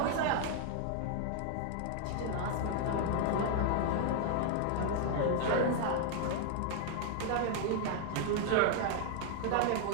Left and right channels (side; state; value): both; different; correlation 0.00